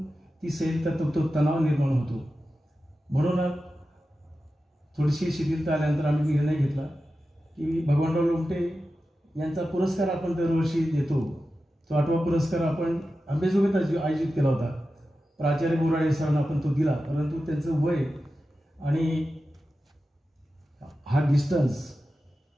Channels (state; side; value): normal; both; correlation 0.92